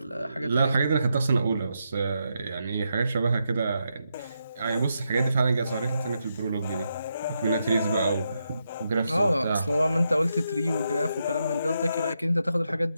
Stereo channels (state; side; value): inverted; both; correlation -0.83